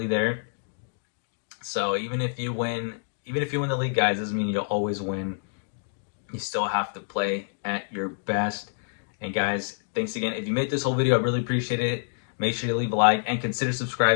there. So even if you win the league, guys, doesn't mean you'll always win. You still have to play at your best. And guys, thanks again. If you made this whole video, I really appreciate it. Make sure you leave a like and consider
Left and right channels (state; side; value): silent; right; digital silence